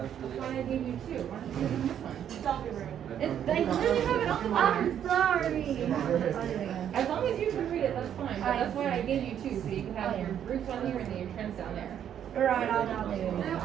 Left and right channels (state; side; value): quieter; left; 9.5 dB